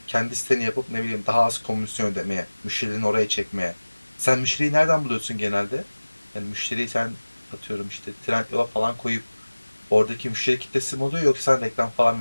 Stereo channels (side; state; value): both; inverted; correlation -1.00